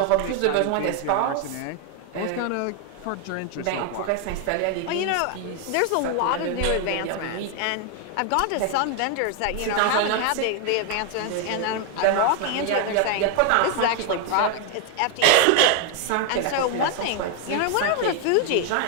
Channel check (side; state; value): both; different; correlation 0.01